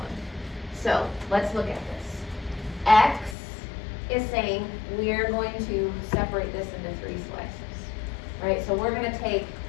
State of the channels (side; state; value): right; drops out; at 3.4 s